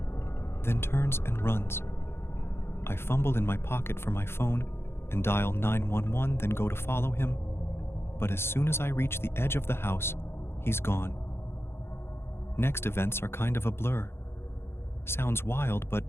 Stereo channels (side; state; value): right; late; 0.12 ms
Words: then turns and runs. I fumble in my pocket for my phone and dial 911, then go to follow him. But as soon as I reach the edge of the house, he's gone. Next events are kind of a blur. Sounds wild, but